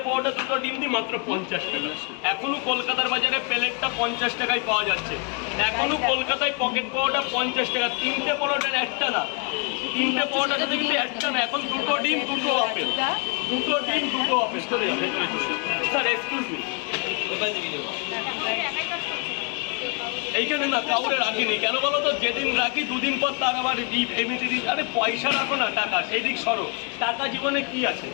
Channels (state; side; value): quieter; right; 34.7 dB